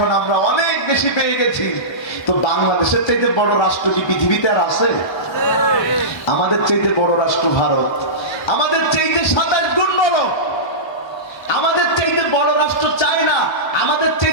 আমরা অনেক বেশি পেয়ে গেছি। তো বাংলাদেশের চাইতে বড় রাষ্ট্র কি পৃথিবীতে আর আছে? আমাদের চাইতে বড় রাষ্ট্র ভারত, আমাদের চাইতে 27 গুণ বড়। আমাদের চাইতে বড় রাষ্ট্র চায়না, আমাদের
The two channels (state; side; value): late; right; 1.1 ms